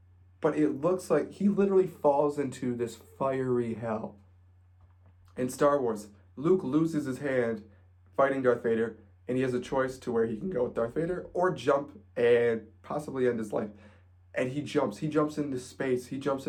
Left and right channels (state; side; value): identical; both; correlation 1.00